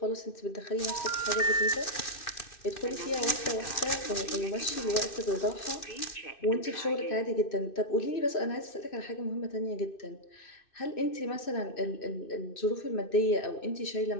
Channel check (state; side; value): late; right; 2.6 ms